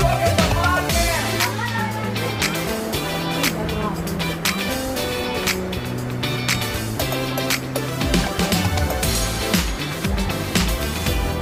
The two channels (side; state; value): both; identical; correlation 1.00